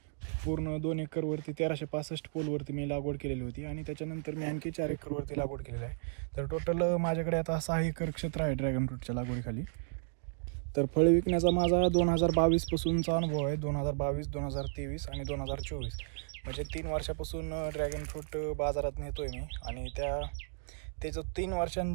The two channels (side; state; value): left; silent; digital silence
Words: पूर्ण 2 एकरवरती 1365 पोलवरती मी लागवड केलेली होती आणि त्याच्यानंतर मी आणखी 4 एकरवरती लागवड केलेली आहे. तर टोटल माझ्याकडे आता 6 एकर क्षेत्र आहे ड्रॅगन फ्रूटच्या लागवडीखाली. तर फळ विकण्याचा माझा 2022 पासूनचा अनुभव आहे. 2022, 2023 आणि 2024 म्हणजे 3 वर्षापासून ड्रॅगन फ्रूट बाजारात नेतोय मी. आणि ते जो 3